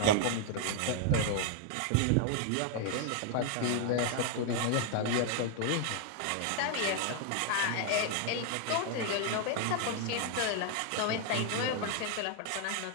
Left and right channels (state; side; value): different; both; correlation 0.00